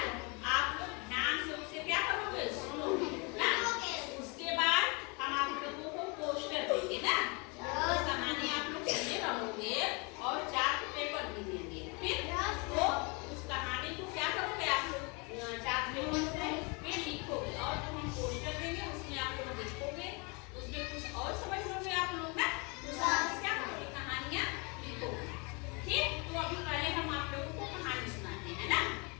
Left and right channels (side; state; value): right; quieter; 31.0 dB